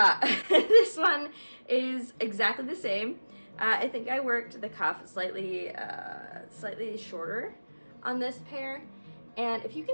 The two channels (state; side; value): inverted; both; correlation -1.00